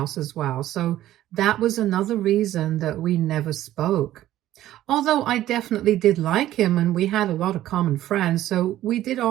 as well, so that was another reason that we never spoke. Although I definitely did like him and we had a lot of common friends, so we did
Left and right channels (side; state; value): left; quieter; 13.7 dB